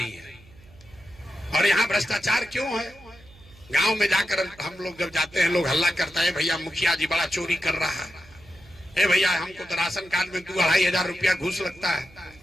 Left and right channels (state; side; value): noise; right; hum, 25 dB below the sound